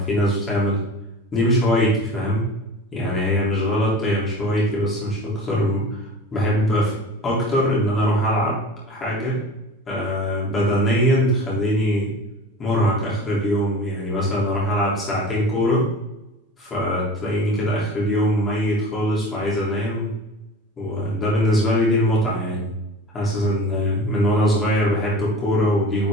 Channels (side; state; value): both; normal; correlation 0.38